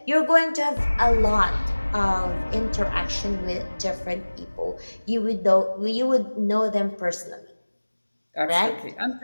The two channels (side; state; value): both; inverted; correlation -1.00